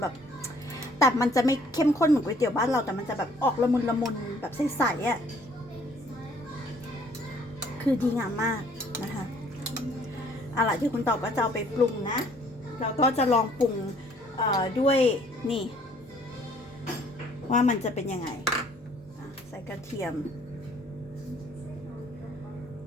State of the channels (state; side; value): normal; both; correlation 0.60